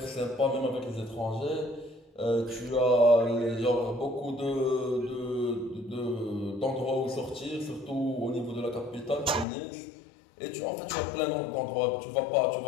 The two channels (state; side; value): drops out; right; at 9.5 s